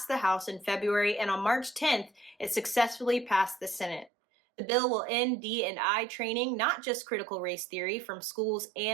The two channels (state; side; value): drops out; left; at 4.1 s